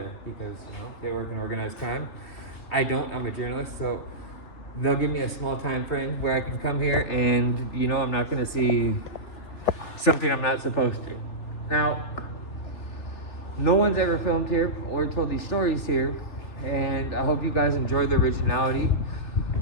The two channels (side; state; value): right; late; 3.4 ms